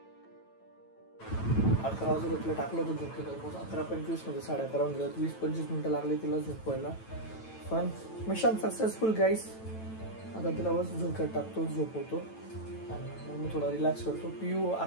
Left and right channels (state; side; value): late; right; 9.1 ms